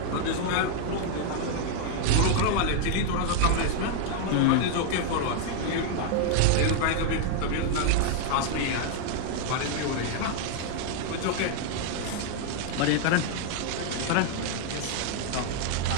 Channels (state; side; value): different; both; correlation 0.00